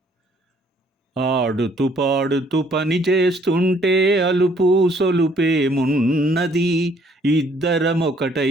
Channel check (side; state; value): both; normal; correlation 0.63